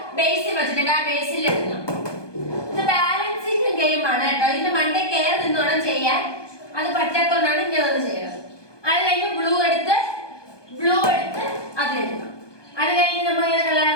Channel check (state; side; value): late; right; 1.2 ms